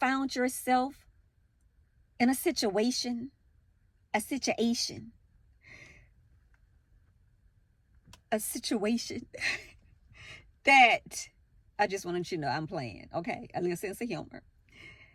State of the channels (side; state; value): both; identical; correlation 1.00